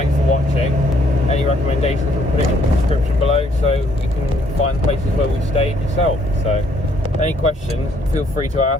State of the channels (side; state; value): both; normal; correlation 0.67